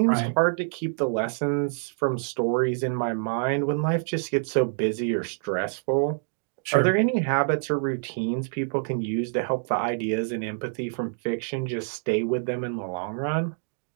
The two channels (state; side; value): silent; left; digital silence